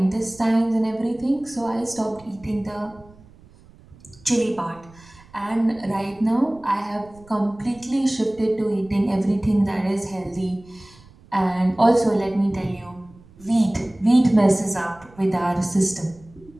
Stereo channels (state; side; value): noise; right; rumble, 25 dB below the sound